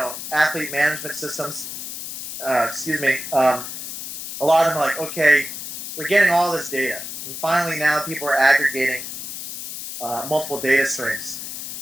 athlete management systems, excuse me, a lot of them are like, okay, we're getting all this data, and finally now people are aggregating multiple data streams,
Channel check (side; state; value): left; noise; hiss, 8 dB below the sound